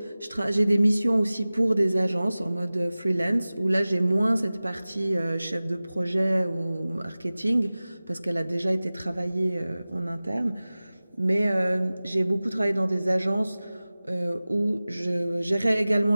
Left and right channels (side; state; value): both; inverted; correlation -0.98